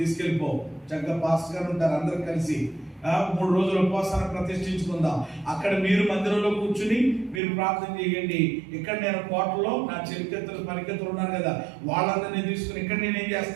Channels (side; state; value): left; drops out; at 7.4 s